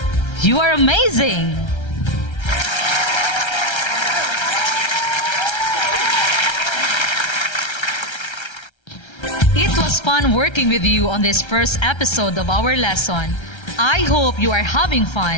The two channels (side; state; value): right; late; 1.3 ms